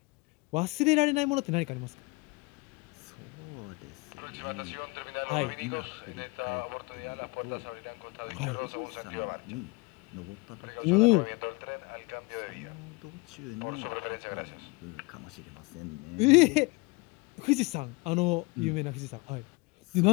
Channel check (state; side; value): quieter; right; 26.2 dB